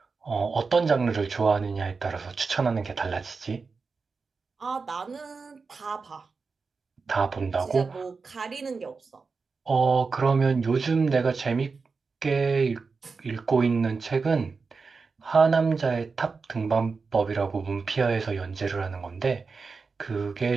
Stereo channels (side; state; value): left; quieter; 4.6 dB